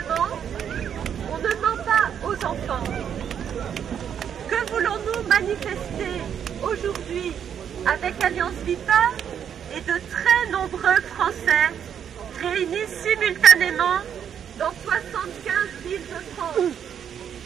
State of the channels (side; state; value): left; quieter; 8.5 dB